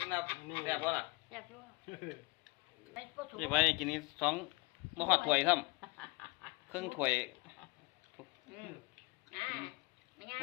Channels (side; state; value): right; quieter; 26.2 dB